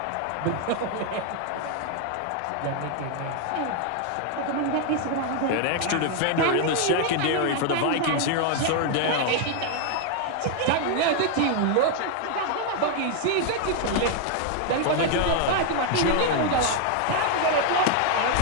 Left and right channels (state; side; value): different; both; correlation 0.00